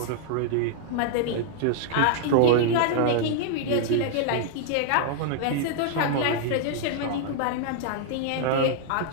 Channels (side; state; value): both; different; correlation -0.01